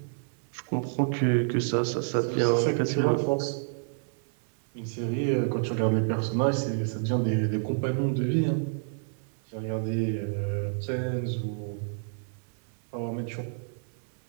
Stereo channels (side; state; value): left; silent; 58 dB below the other